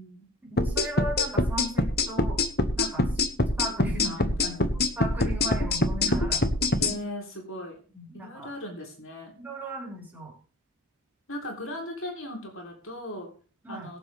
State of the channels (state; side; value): normal; both; correlation 0.45